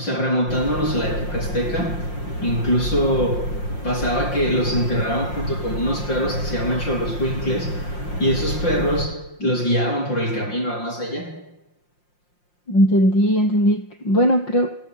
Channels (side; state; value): right; late; 5.7 ms